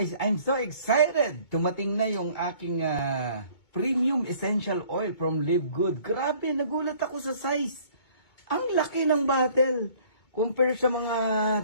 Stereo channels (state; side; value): late; right; 2.2 ms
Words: I'm so excited! Tumating na yung aking premium essential oil from Live Good. Grabe, nagulat ako sa size. Ang laki ng bottle. Compare sa mga